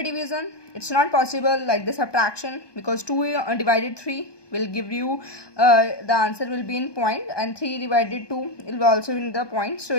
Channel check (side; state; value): right; late; 1.2 ms